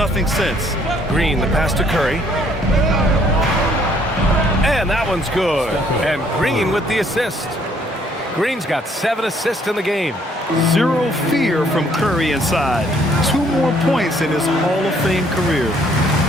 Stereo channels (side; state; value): both; normal; correlation 0.64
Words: since. Green, the pass to Curry. And that one's good. And Green with the assist. Green's got 7 assists in the game. Zero fear from Curry inside. 2 more points in his Hall of Fame career.